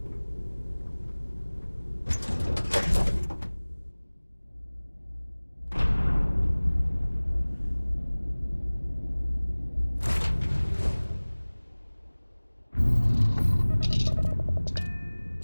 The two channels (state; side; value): inverted; both; correlation -1.00